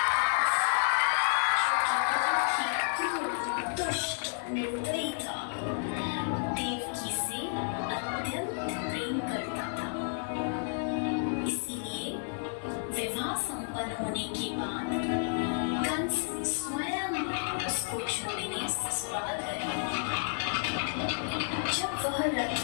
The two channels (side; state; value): right; silent; 57 dB below the other